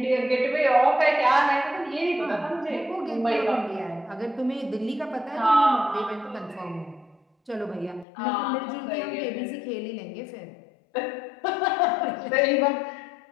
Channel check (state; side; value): drops out; right; at 8.1 s